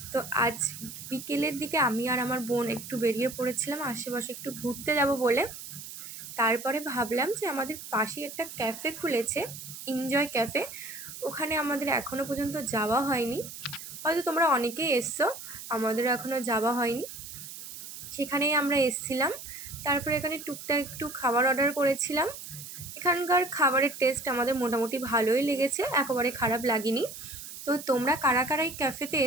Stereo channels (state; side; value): noise; right; hiss, 11 dB below the sound